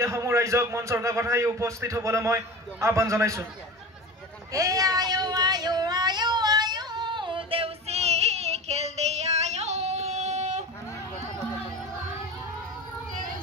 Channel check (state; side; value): normal; both; correlation 0.31